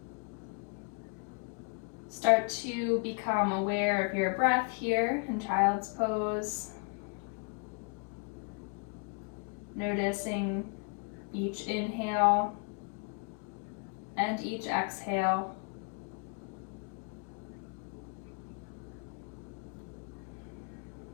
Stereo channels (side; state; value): right; quieter; 36.9 dB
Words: Start to become aware of your breath here in child's pose. Noticing each inhale and each exhale.